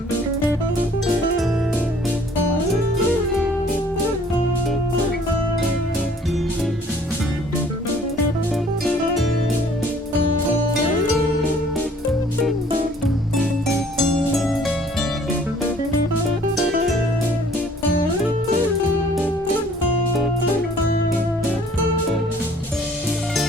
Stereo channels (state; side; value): normal; both; correlation 0.56